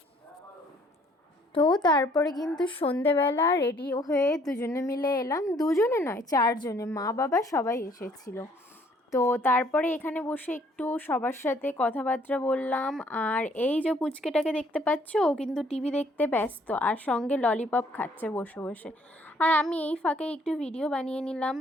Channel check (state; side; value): normal; both; correlation 0.62